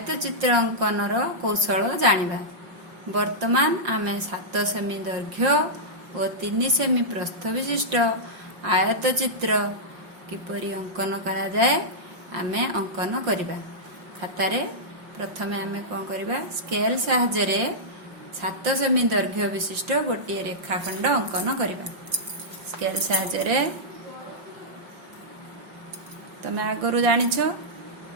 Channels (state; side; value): late; left; 5.6 ms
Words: चित्र अंकन कौशल जानिबा। वर्तमान आम 7 सेमी दैर्घ्य और 3 सेमी प्रस्थ विशिष्ट आयत चित्र किपरि अंकन करा जाए आमे अंकन करिबा। खातारे प्रथमे आमे कोन करिबा, स्केल साहाय्य 7 सेमी दैर्घ्य विशिष्ट गोटे रेखाखंड अंकन करिबा। स्केल साहाय्य तमे आगरू जानिछ